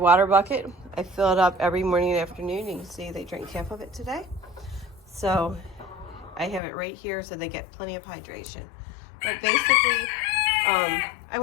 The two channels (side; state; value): right; drops out; at 6.6 s